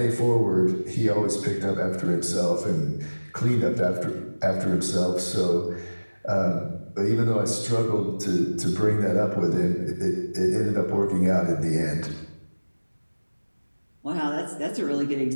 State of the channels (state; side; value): inverted; both; correlation -1.00